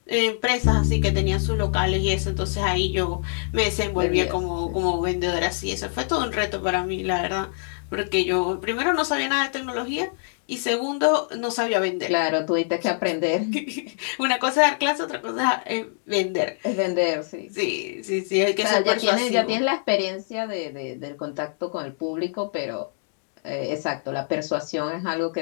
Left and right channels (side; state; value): right; silent; digital silence